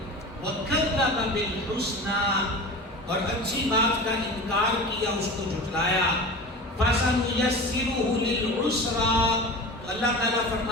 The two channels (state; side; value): normal; both; correlation 0.33